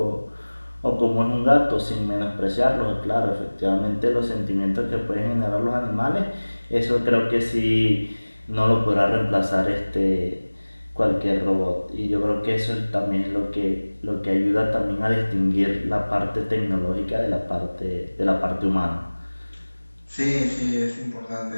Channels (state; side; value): inverted; both; correlation -1.00